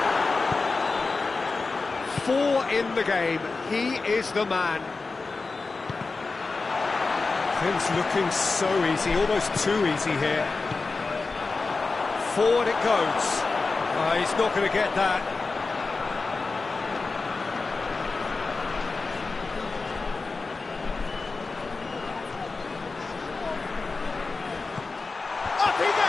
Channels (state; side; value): quieter; right; 4.0 dB